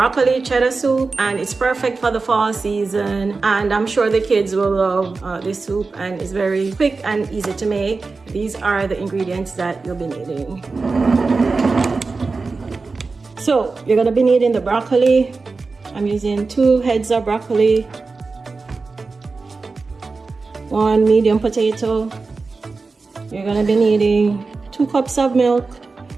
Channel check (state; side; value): quieter; left; 4.1 dB